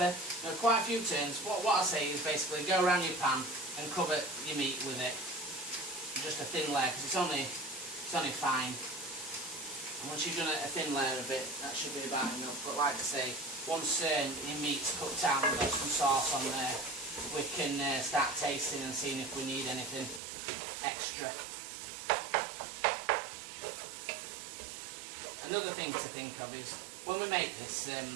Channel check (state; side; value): drops out; left; at 20.2 s